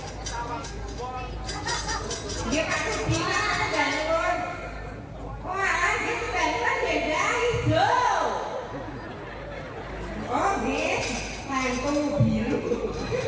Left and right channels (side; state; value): both; identical; correlation 1.00